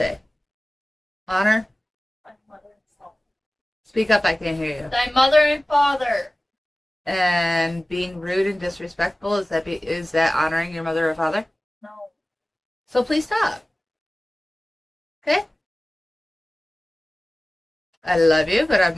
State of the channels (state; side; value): normal; both; correlation 0.97